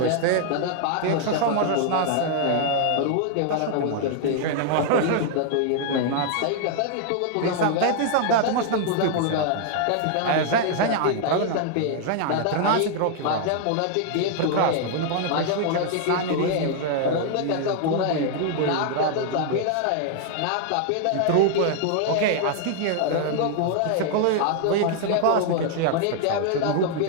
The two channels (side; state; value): both; different; correlation 0.00